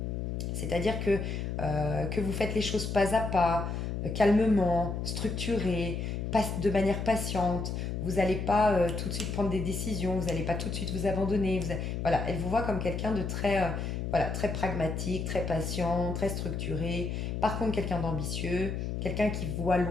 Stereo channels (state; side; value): noise; left; hum, 3 dB below the sound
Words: C'est-à-dire que vous faites les choses pas à pas, calmement, structuré, de manière patiente. Vous n'allez pas tout de suite prendre des décisions, vous n'allez pas tout de suite vous abandonner. Voilà, elle vous voit comme quelqu'un de très, voilà, très pragmatique, très patient, très structuré. Par contre, quelqu'un d'ambitieux, quelqu'un qui voit